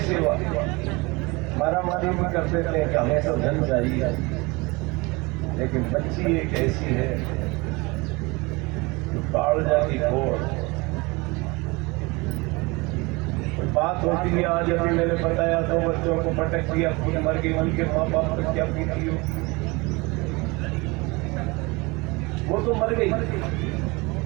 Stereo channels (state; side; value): quieter; left; 25.1 dB